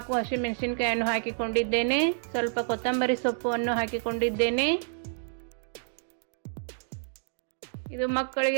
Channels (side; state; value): left; silent; digital silence